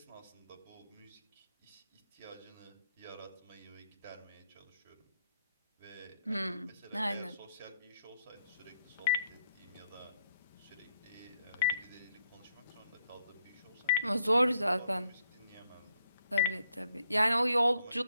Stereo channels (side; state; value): both; inverted; correlation -0.74